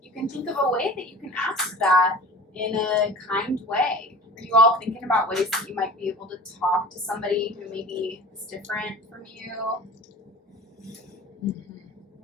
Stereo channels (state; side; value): normal; both; correlation 0.40